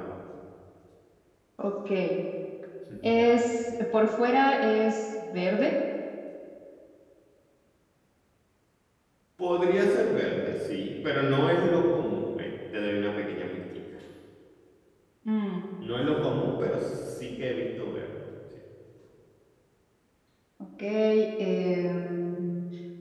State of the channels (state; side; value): identical; both; correlation 1.00